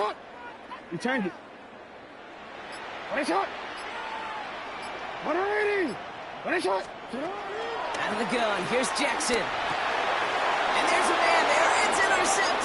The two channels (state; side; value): identical; both; correlation 1.00